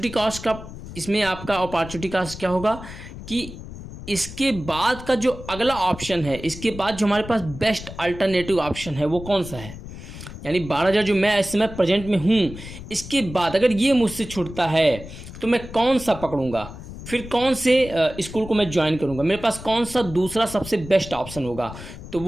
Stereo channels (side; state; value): left; noise; rumble, 13 dB below the sound